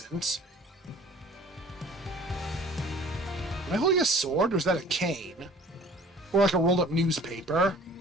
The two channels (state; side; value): normal; both; correlation 0.49